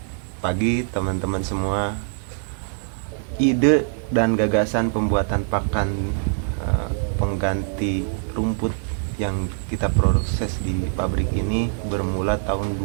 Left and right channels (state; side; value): silent; left; digital silence